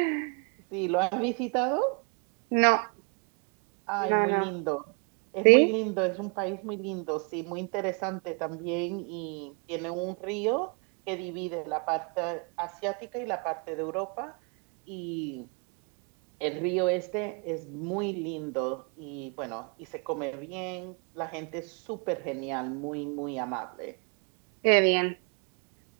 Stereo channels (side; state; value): left; quieter; 37.5 dB